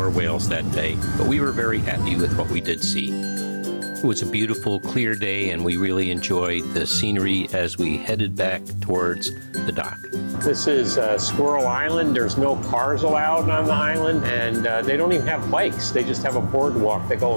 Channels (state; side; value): inverted; both; correlation -1.00